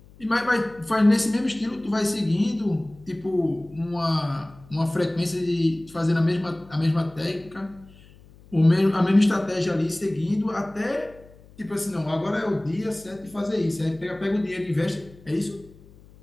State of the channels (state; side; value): noise; left; hum, 24 dB below the sound